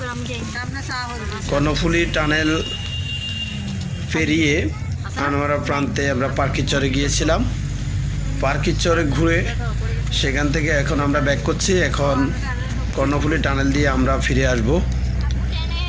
কর্ণফুলী টানেল পেরিয়ে আনোয়ারা প্রান্তে আমরা পার্কিচরে গিয়েছিলাম। পার্কিচরে ঘুরে সেখান থেকে এখন আমরা ব্যাক করছি। এখন কর্ণফুলী টানেল দিয়ে আমরা ফিরে আসব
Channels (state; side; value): identical; both; correlation 1.00